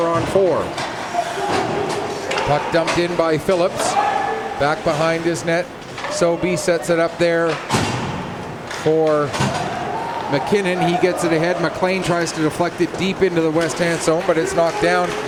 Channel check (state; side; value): identical; both; correlation 1.00